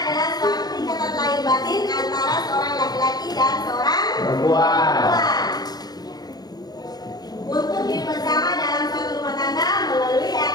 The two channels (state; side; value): late; right; 0.19 ms